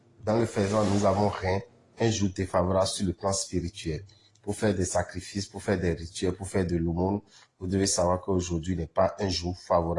dans le faisant, nous avons rien, un jour défavorable sur le plan spirituel. Pour faire des sacrifices, pour faire des rituels, pour faire de l'aumône, vous devez savoir qu'aujourd'hui n'est pas un jour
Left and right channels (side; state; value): both; identical; correlation 1.00